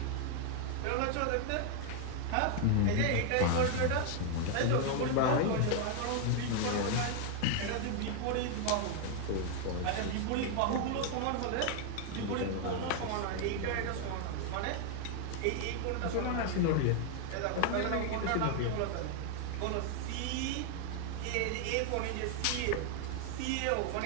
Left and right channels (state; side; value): different; both; correlation 0.00